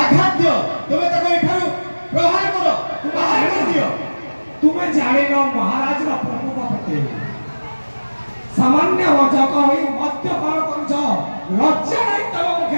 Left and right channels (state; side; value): inverted; both; correlation -1.00